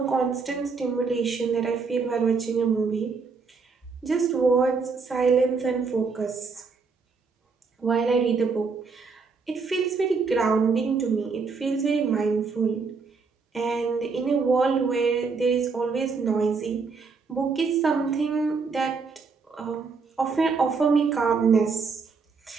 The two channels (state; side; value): quieter; left; 4.8 dB